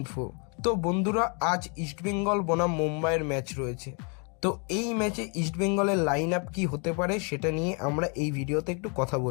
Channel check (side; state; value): right; quieter; 35.7 dB